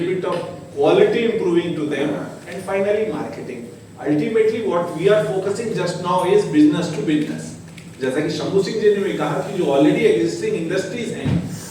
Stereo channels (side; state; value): both; identical; correlation 1.00